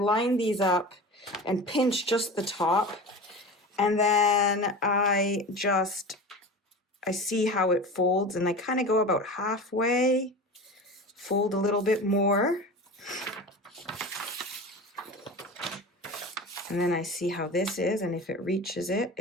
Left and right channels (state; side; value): normal; both; correlation 0.32